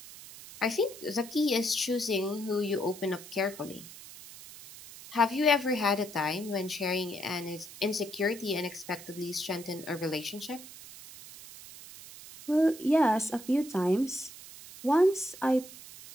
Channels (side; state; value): right; noise; hiss, 16 dB below the sound